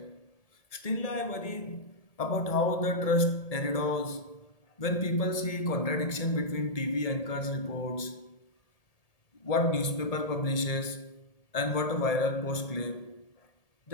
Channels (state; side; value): late; right; 1.8 ms